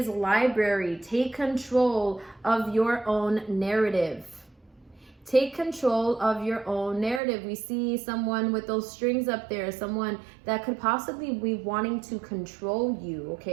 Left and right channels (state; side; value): drops out; left; at 7.2 s